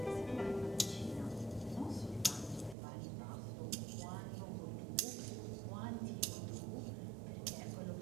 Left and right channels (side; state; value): left; drops out; at 2.8 s